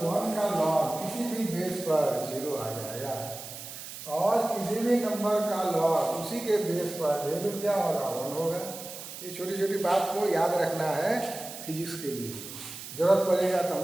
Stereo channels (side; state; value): right; noise; hiss, 11 dB below the sound